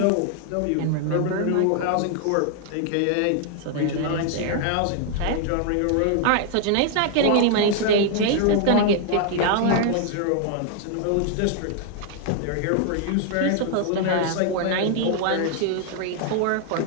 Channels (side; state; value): both; different; correlation 0.00